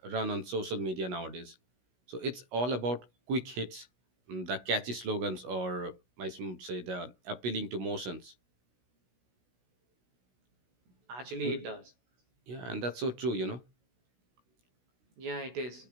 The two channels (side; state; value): left; late; 16 ms